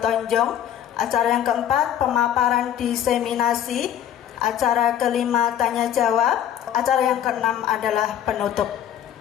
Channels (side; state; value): right; quieter; 10.5 dB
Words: Acara yang keempat, pemaparan diseminasi. Acara kelima, tanya jawab. Acara yang keenam adalah penutup.